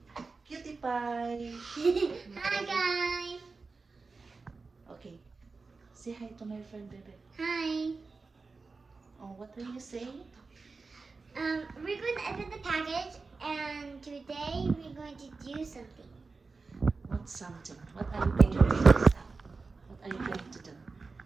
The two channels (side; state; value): left; quieter; 4.2 dB